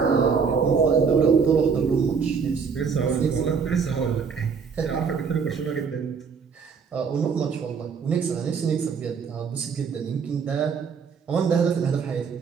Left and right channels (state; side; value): quieter; left; 5.9 dB